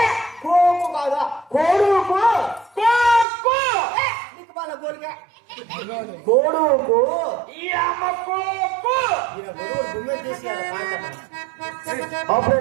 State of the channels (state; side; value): drops out; left; at 3.2 s